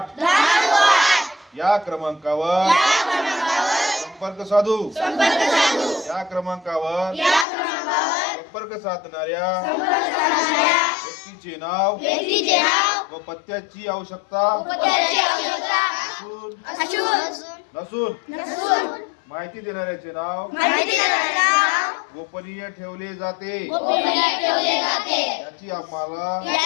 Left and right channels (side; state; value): right; drops out; at 7.5 s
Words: या क्रमांकावर संपर्क साधू. या क्रमांकावर संपर्क साधणाऱ्या व्यक्तीचे नाव व पत्त्याची आवश्यकता नसून माहिती देणाऱ्याचे नाव गोपनीय ठेवले जाते. याची आम्हाला